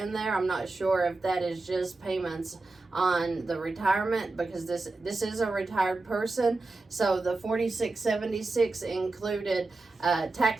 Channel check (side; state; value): left; quieter; 3.4 dB